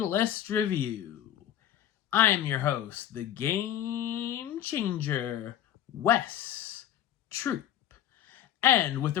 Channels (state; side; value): quieter; right; 11.3 dB